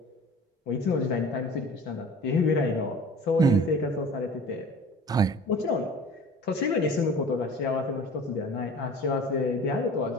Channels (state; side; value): normal; both; correlation 0.43